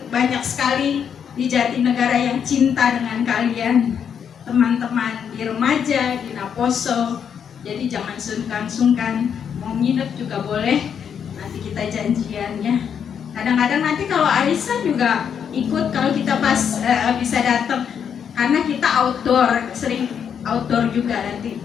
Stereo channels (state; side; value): quieter; right; 7.8 dB